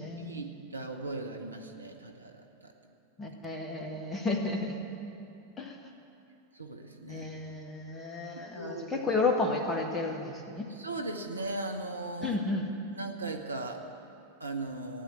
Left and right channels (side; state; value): both; normal; correlation 0.07